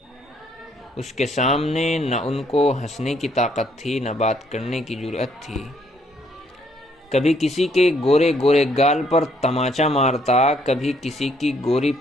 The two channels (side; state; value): both; normal; correlation 0.68